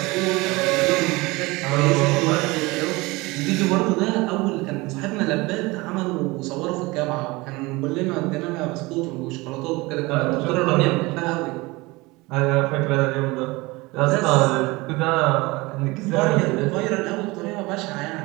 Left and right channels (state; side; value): quieter; left; 22.8 dB